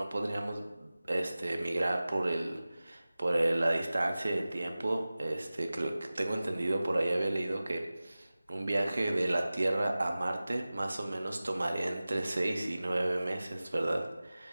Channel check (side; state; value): both; inverted; correlation -0.97